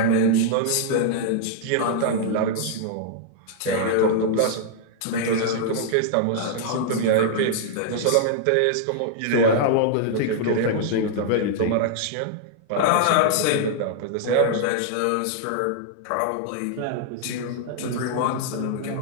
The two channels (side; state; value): both; different; correlation -0.01